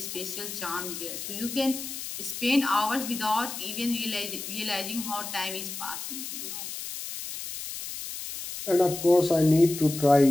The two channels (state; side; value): noise; left; hiss, 8 dB below the sound